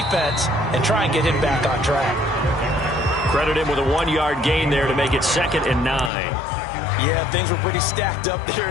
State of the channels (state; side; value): drops out; right; at 6.1 s